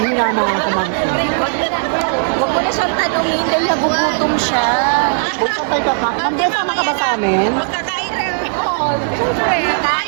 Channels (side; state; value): left; silent; digital silence